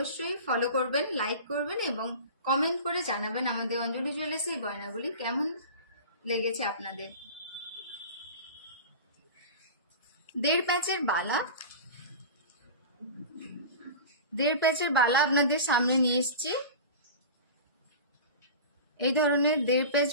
ফলো করবেন, লাইক করবেন এবং কমেন্ট করে জানাবেন আমাদের অঞ্জলি জুয়েলার্সের গয়নাগুলি কেমন লেগেছে আপনাদের। 1.5 প্যাচের বালা, 1.5 প্যাচের বালা আপনাদের সামনে নিয়ে এসেছি। এই ধরনের 1.5 প্যাচ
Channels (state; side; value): inverted; both; correlation -0.33